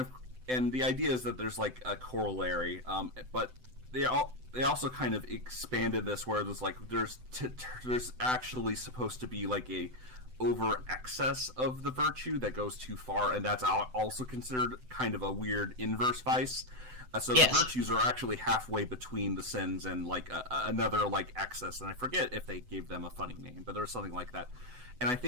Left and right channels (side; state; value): left; late; 7.9 ms